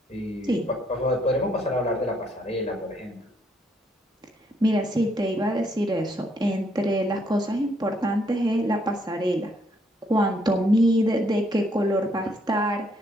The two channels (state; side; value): normal; both; correlation 0.71